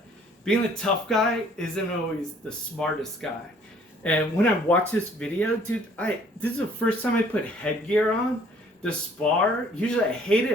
being the tough guy isn't always the smartest guy. And when I watch this video, dude, this is the first time I put headgear on to spar. Usually I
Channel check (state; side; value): normal; both; correlation 0.58